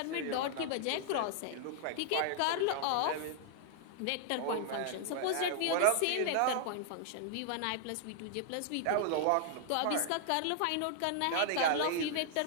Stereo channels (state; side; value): different; both; correlation 0.00